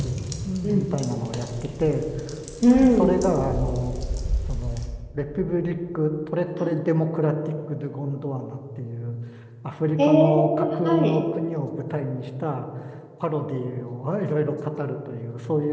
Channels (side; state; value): both; identical; correlation 1.00